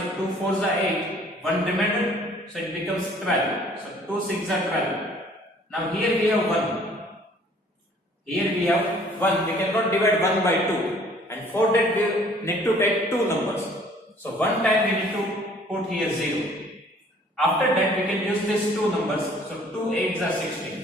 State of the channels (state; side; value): normal; both; correlation 0.56